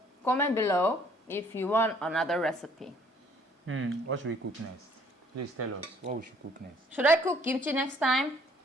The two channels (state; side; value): normal; both; correlation 0.60